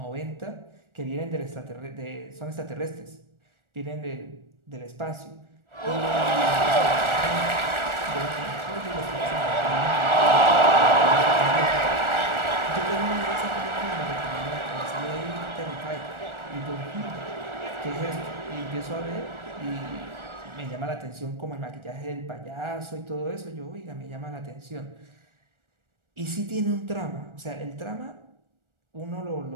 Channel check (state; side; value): late; left; 1.4 ms